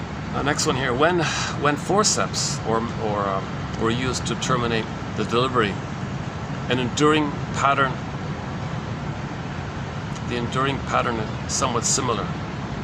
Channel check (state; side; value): identical; both; correlation 1.00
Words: Yeah. Next one here. When forceps were used to terminate the delivery, the enduring pattern is somewhat similar.